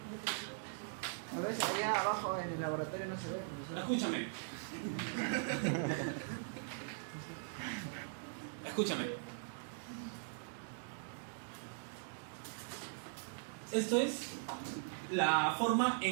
A veces allá abajo en el laboratorio no se ve. Escúchame. Escúchame. Esto es la forma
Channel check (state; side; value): silent; left; digital silence